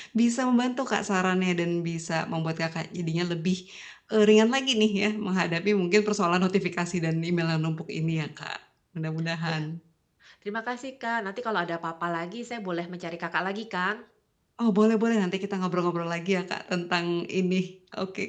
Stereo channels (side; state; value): both; identical; correlation 1.00